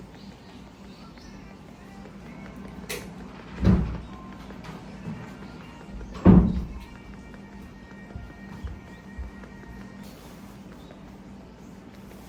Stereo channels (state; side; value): identical; both; correlation 1.00